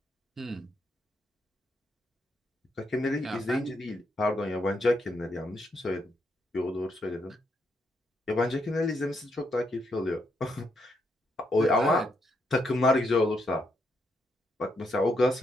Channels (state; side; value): normal; both; correlation 0.78